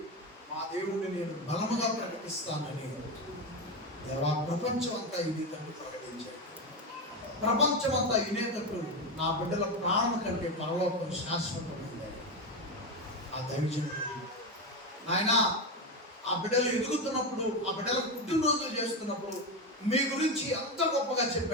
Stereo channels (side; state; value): both; normal; correlation 0.14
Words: మా దేవుడిని నేను బలముగా ప్రకటిస్తానని దేవా ప్రపంచం అంతా ఇనేటట్టు ప్రకటించాడు. ప్రపంచం అంతా ఇనేటట్టు నా బిడ్డల ప్రాణం కంటే పరలోకం శాశ్వతమైంది. ఆ దైవజనుడు ఆయన ఆ బిడ్డలు ఎదుగుతున్నప్పుడు, ఆ బిడ్డల పుట్టినరోజులు చేస్తున్నప్పుడు మీ గురించి ఎంత గొప్పగా